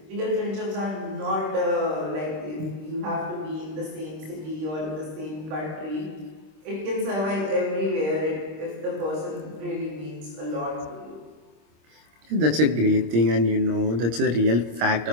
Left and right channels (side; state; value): left; late; 26 ms